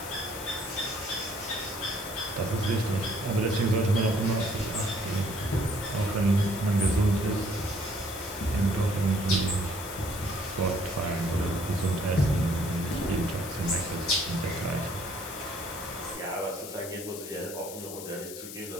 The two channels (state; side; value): noise; left; hiss, 11 dB below the sound